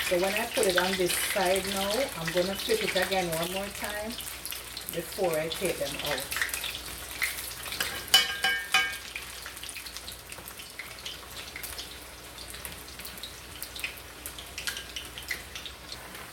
So when I put it on this side now, I'm going to flip it again one more time before I take them out.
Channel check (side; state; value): both; identical; correlation 1.00